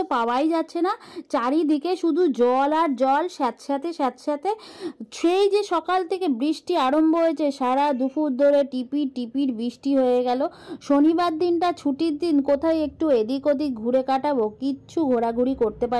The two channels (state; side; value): identical; both; correlation 1.00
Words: পাওয়াই যাচ্ছে না। চারিদিকে শুধু জল আর জল, স্যাঁতস্যাঁতে স্যাঁতস্যাঁতে। সেই যে সকাল থেকে বৃষ্টি আরম্ভ হয়েছে, সারা দুপুর ধরে টিপির টিপির বৃষ্টি হয়ে গেল। শনিবার দিনটা ছুটির দিন, কোথায় একটু এদিক ওদিক ঘুরে কাটাবো, কিচ্ছু ঘোরাঘুরি করতে